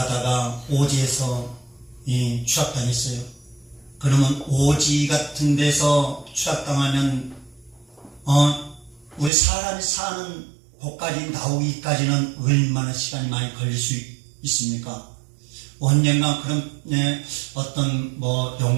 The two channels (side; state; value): left; drops out; at 9.3 s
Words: 오지에서 추락당했어요. 그러면 오지 같은 데서 추락당하면 우리 사람이 사는 곳까지 나오기까지는 얼마나 시간이 많이 걸릴 수 있습니까? 언젠가 그런 어떤